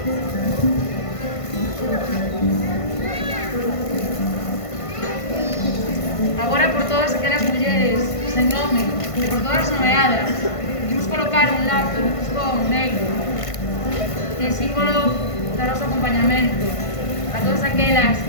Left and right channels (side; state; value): right; late; 1.5 ms